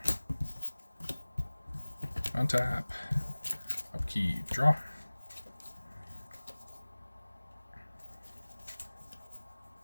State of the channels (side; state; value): both; inverted; correlation -1.00